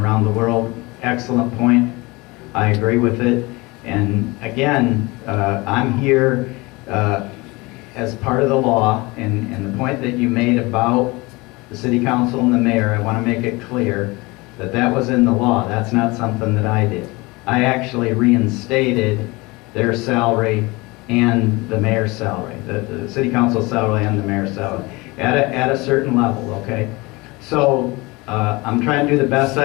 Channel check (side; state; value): right; quieter; 23.9 dB